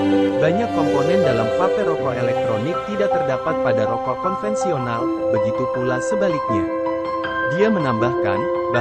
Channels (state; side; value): identical; both; correlation 1.00